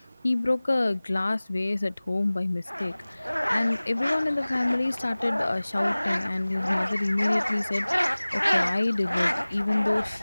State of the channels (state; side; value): inverted; both; correlation -0.99